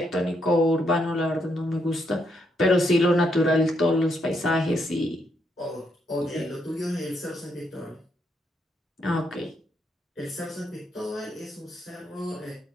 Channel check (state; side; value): normal; both; correlation 0.77